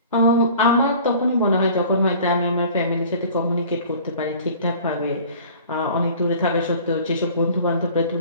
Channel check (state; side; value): inverted; both; correlation -0.46